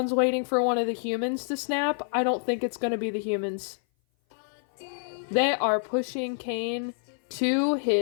waiting for one of the humans to snap. I don't think it's gonna be the humans. They are pushing Kane to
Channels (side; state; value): right; silent; 57 dB below the other